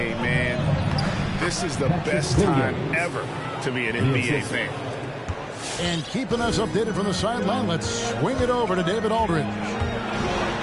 man, this is the best time ever to be an NBA fan. And keeping us updated from the sideline, let's swing it over to David Aldridge.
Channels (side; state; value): both; identical; correlation 1.00